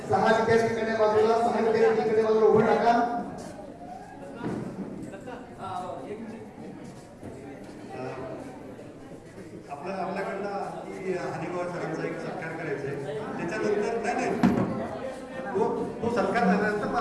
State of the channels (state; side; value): identical; both; correlation 1.00